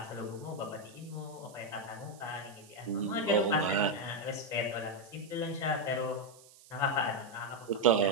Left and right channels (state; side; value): noise; right; hiss, 23 dB below the sound